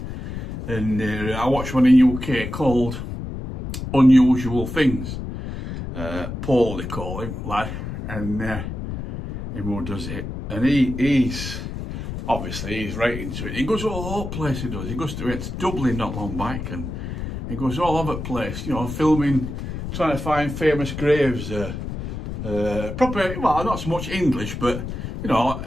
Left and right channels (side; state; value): left; noise; rumble, 6 dB below the sound